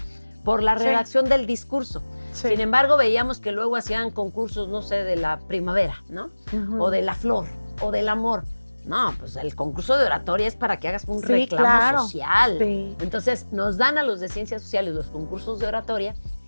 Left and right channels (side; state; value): both; inverted; correlation -1.00